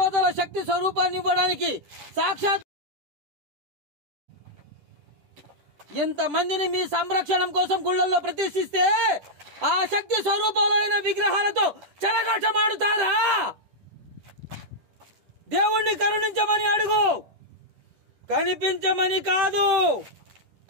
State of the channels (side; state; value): left; late; 10 ms